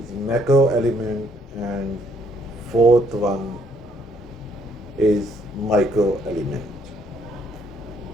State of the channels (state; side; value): normal; both; correlation 0.68